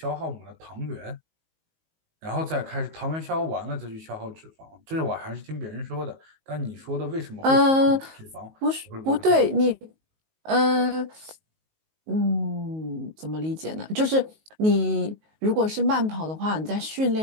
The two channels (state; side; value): late; left; 19 ms